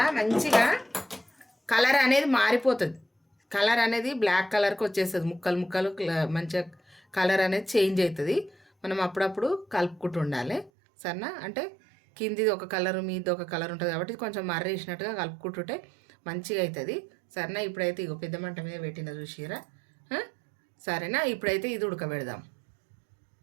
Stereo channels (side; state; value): left; drops out; at 10.7 s